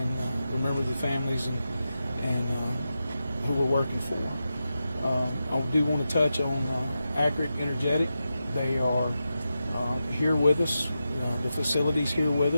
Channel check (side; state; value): both; inverted; correlation -0.89